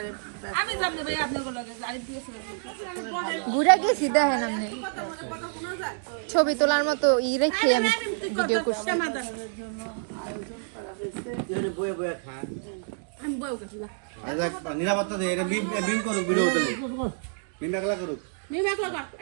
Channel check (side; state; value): left; silent; digital silence